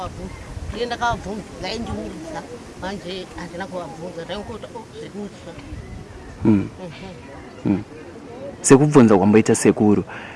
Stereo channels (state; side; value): identical; both; correlation 1.00